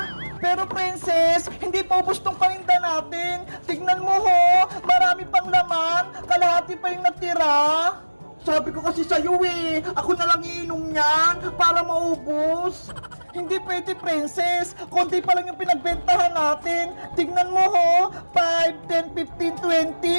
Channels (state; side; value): inverted; both; correlation -1.00